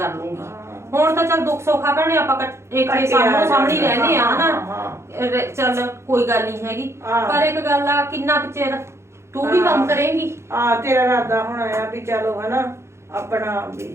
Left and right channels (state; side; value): late; left; 0.13 ms